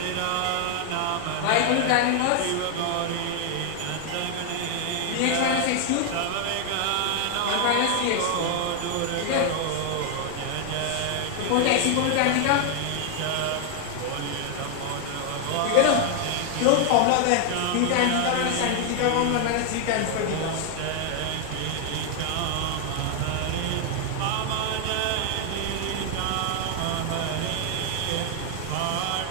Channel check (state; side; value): different; both; correlation 0.00